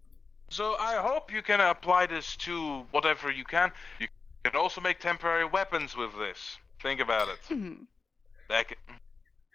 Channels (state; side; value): quieter; right; 4.5 dB